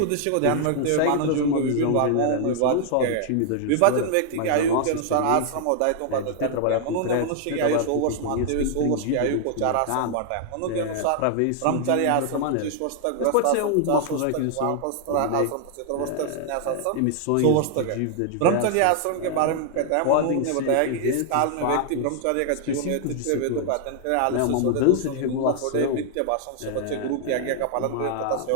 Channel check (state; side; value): different; both; correlation 0.00